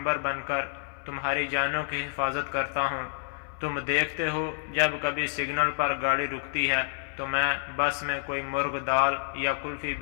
بن کر تمہاری جانوں کی حفاظت کرتا ہوں۔ تم دیکھتے ہو جب کبھی سگنل پر گاڑی رکتی ہے تو میں بس میں کوئی مرغ دال یا کلفی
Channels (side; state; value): right; silent; 59 dB below the other